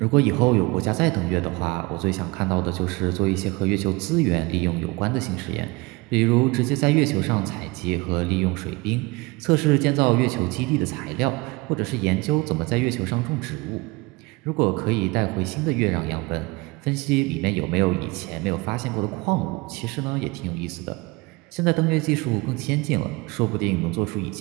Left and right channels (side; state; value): left; quieter; 24.4 dB